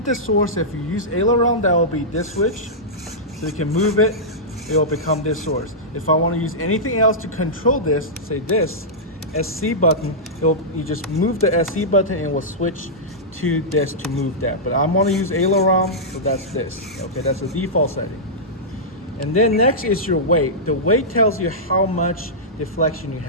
the source. If you use aileron, that will be this switch. So you can move it, it will become this source. If I want to use anything else to control this, say this SC button, you just move the SC button and it will switch to this to move that. But I'm going to use aileron, so that's this. Okay, that's the default setting. And then next is your weight. The weight tells you how much deflection you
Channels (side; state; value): both; normal; correlation -0.13